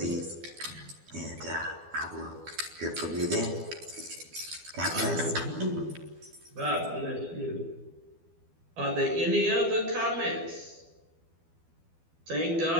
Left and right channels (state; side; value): late; left; 12 ms